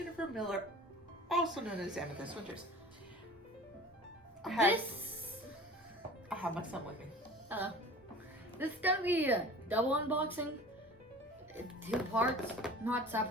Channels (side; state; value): both; normal; correlation 0.42